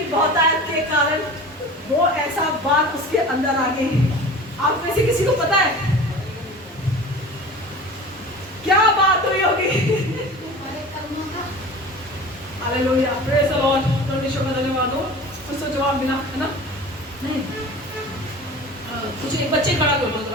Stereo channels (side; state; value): both; normal; correlation 0.38